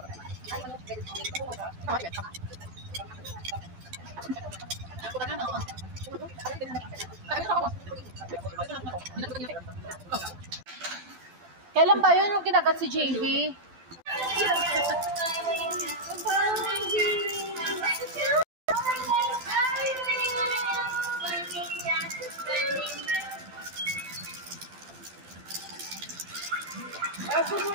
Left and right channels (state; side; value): late; left; 12 ms